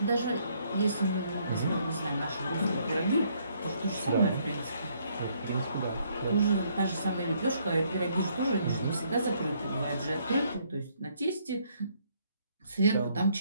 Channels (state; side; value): inverted; both; correlation -0.68